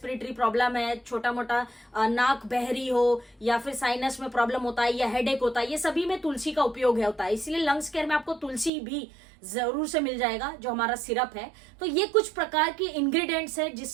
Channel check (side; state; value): left; drops out; at 8.7 s